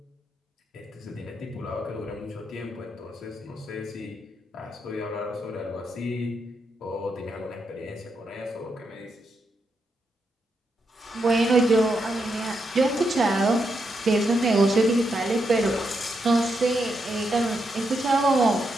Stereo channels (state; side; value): normal; both; correlation 0.82